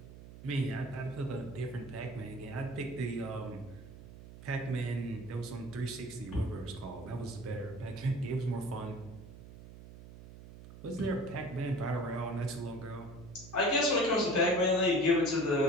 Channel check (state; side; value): noise; right; hum, 16 dB below the sound